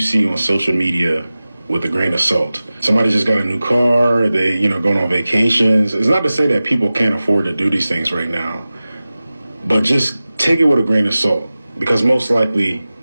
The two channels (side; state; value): both; inverted; correlation -0.96